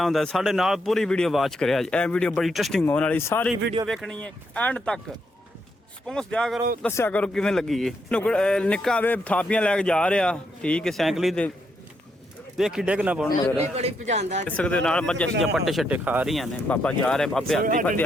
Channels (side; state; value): both; normal; correlation 0.78